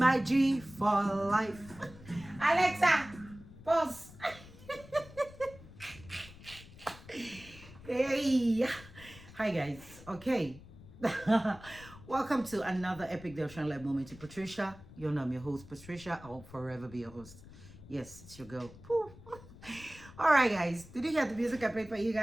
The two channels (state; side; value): noise; left; rumble, 19 dB below the sound